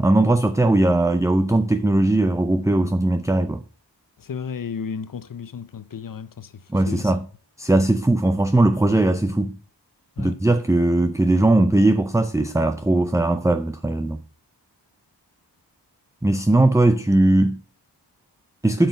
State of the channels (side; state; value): both; normal; correlation 0.92